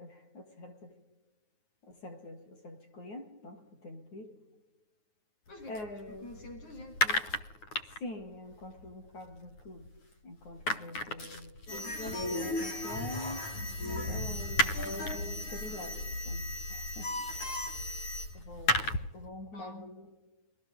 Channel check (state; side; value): late; right; 9.5 ms